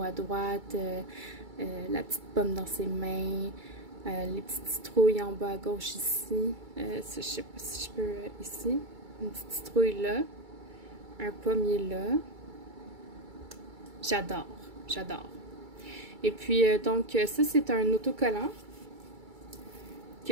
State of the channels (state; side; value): late; left; 2.3 ms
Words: à droite, la petite pomme dans ses mains, les petites citrouilles en bas à gauche ici. Je sais pas si je peux ici. Une petite citrouille là, un pommier là. J'adore, j'adore. Et puis donc ça c'est un autocollant